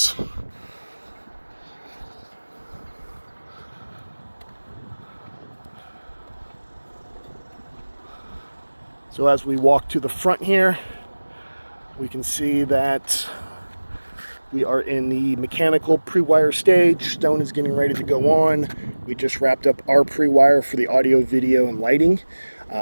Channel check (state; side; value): inverted; both; correlation -1.00